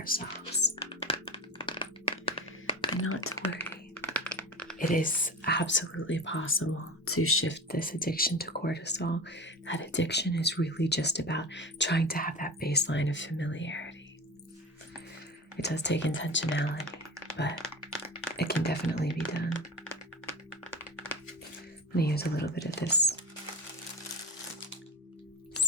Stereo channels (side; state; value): both; normal; correlation 0.29